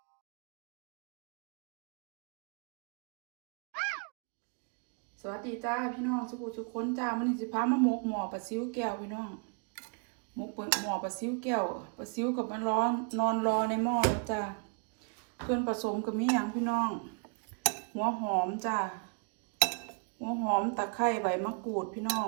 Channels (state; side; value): quieter; left; 39.2 dB